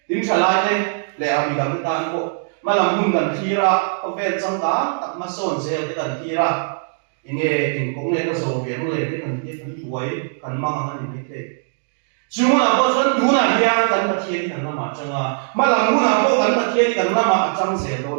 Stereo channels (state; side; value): silent; left; digital silence